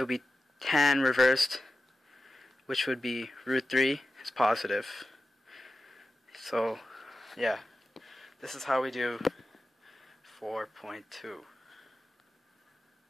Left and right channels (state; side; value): normal; both; correlation 0.94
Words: would be tan reversed, which would be √3 is positive. So yeah, this is how we do 4.2.